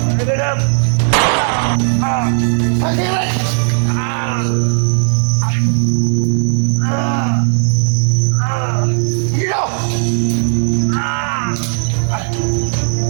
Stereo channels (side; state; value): left; silent; digital silence